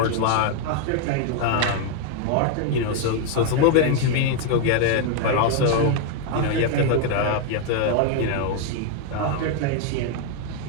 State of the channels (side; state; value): both; different; correlation 0.01